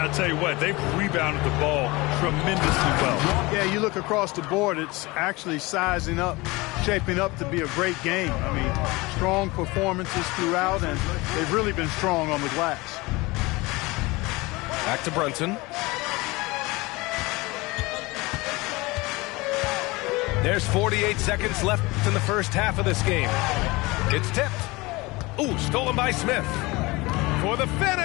tell you what, they've rebounded the ball tremendously well. Yeah, you look across the board, it's actually sizing up, shaping up to be a great game. I mean, strong performances throughout, and they've really been strong on the glass. Back to Brunson. There's 48 seconds left in the first half of this game. It's tipped. Ooh, stolen by Smith. For the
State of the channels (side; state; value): right; quieter; 23.0 dB